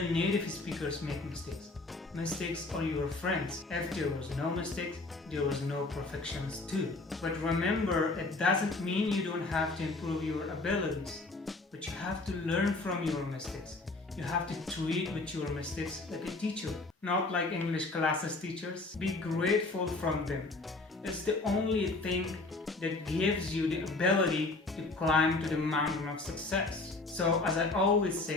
native speakers make mistakes. Mistakes are your friends. If there was no mistakes, there was no perfections too. But remember, it doesn't mean you don't have to improve your abilities, but you have to learn from your mistakes. You have to treat with your mistakes like a teacher, not like English classes teachers. Be grateful from them. It's the only thing that gives you the ability to climb to the mountain of success. So as I always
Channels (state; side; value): quieter; right; 3.3 dB